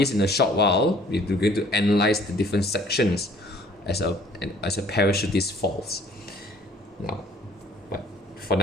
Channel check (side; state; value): both; normal; correlation 0.56